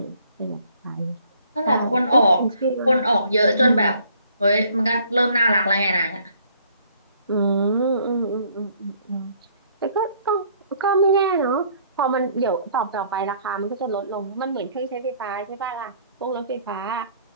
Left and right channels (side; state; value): both; inverted; correlation -0.61